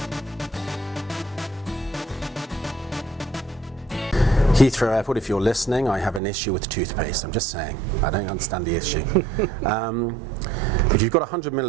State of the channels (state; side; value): drops out; left; at 6.2 s